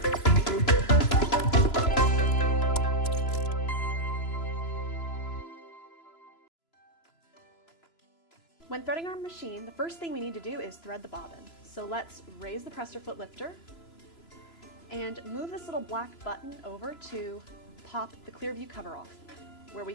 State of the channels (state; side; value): late; right; 3.0 ms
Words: threading our machine, the first thing we need to do is thread the bobbin. So let's raise the presser foot lifter and move this little black button over to pop the clear view cover off, where we